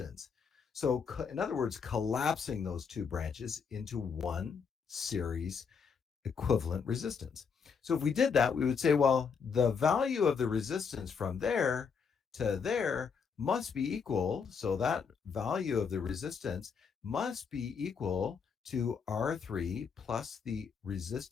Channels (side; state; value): right; quieter; 6.0 dB